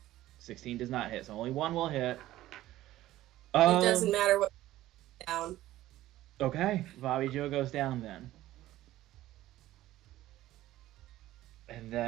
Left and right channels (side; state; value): left; quieter; 15.1 dB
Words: 16 does not hit, so only one will hit. it doesn't matter what down. Okay, Bobby Joe goes down then. And